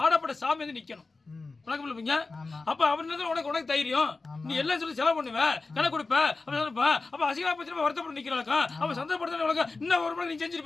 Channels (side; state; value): right; quieter; 3.7 dB